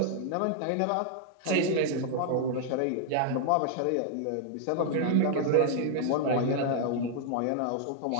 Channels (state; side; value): different; both; correlation 0.00